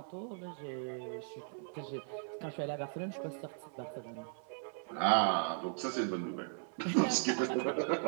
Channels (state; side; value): silent; left; 53 dB below the other